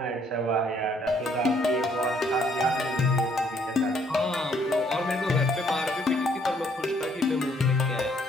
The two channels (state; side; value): normal; both; correlation 0.66